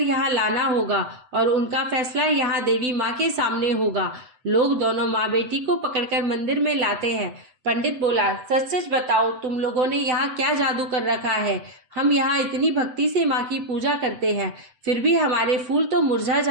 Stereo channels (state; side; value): late; left; 7.9 ms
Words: लाना होगा और उनका फैसला यहाँ देवी माँ के सामने होगा। लोग दोनों माँ बेटी को पकड़कर मंदिर में लाते हैं। पंडित बोला, सच सच बताओ, तुम लोगों ने यहाँ क्या जादू कर रखा है? हम यहाँ इतनी भक्ति से माँ की पूजा करते हैं, फिर भी हमारे फूल तो मुरझा